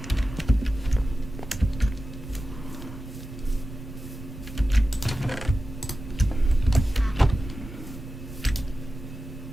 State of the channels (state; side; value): normal; both; correlation 0.93